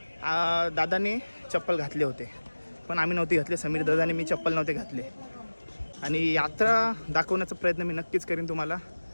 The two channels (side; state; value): both; inverted; correlation -1.00